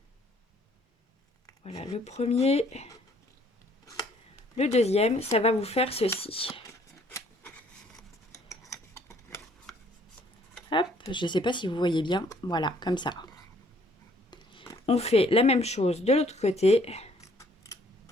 Voilà, le premier. Le deuxième, ça va vous faire ceci. Hop, je ne sais pas si vous voyez bien. Voilà, comme ça. On fait la même chose de l'autre côté.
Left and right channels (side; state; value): both; normal; correlation 0.62